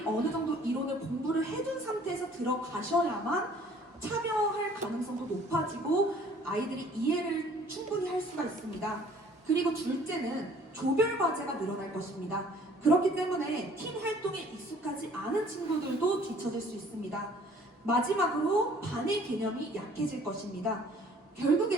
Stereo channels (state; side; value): normal; both; correlation 0.55